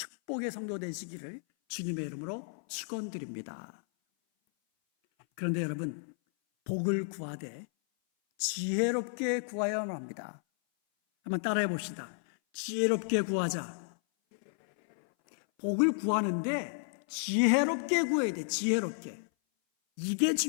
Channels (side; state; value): right; silent; 56 dB below the other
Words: 성도 되시기를 주님의 이름으로 축원드립니다. 그런데 여러분, 복을 구하되 지혜롭게 구하여야 합니다. 한번 따라해 봅시다. 지혜롭게 구하자. 복을 구하는데 지혜롭게 구해야 돼. 지혜롭게. 이게